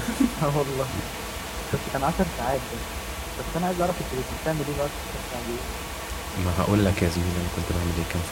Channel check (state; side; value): identical; both; correlation 1.00